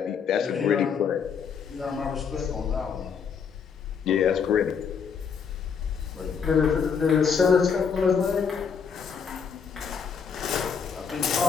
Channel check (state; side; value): quieter; right; 6.5 dB